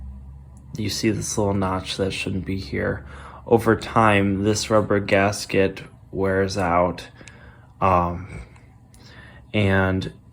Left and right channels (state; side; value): identical; both; correlation 1.00